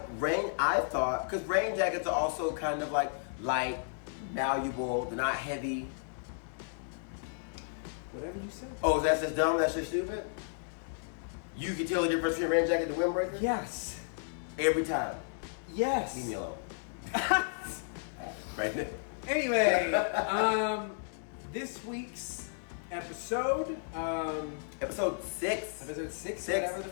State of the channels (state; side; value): silent; right; digital silence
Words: thought because rain jackets are also kind of like light, malleable, they're not heavy. Whatever you say. Oh, that's just dumb? That's just stupid? You can tell the difference between a rain jacket and a windbreaker? Yes. Every time. Yes. Leave me alone. Right there. Anyway, this week's episode, episode 6. Episode 6, whatever the